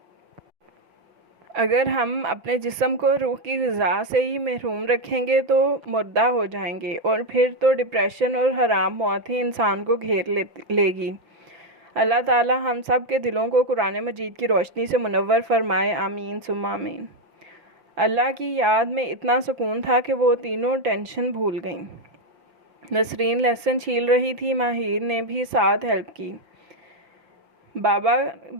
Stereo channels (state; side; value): late; left; 5.5 ms